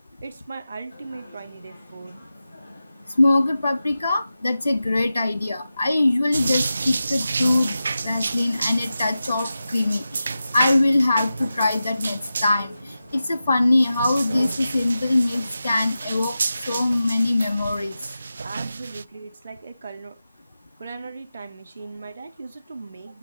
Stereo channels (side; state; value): both; inverted; correlation -0.92